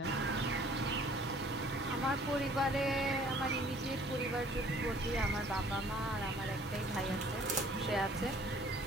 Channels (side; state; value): both; normal; correlation 0.54